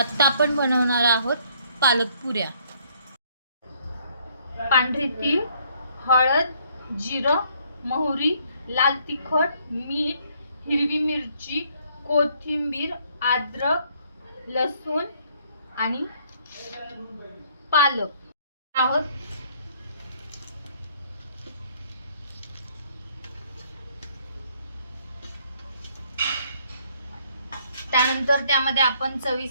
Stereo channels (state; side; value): inverted; both; correlation -0.64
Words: आपण बनवणार आहोत पालक पुऱ्या। पांढरी तीळ, हळद, जिरं, मोहरी, लाल तिखट, मीठ, हिरवी मिरची, कोथिंबीर, अद्रक, लसूण आणि पालक आहोत। त्यानंतर त्यामध्ये आपण